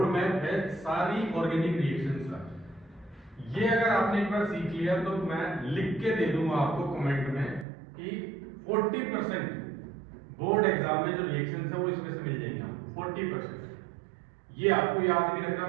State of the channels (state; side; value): drops out; left; at 7.7 s